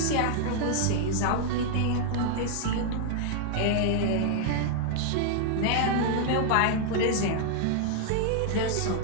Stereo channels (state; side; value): different; both; correlation 0.00